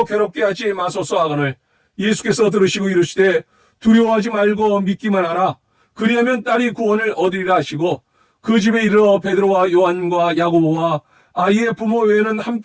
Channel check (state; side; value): identical; both; correlation 1.00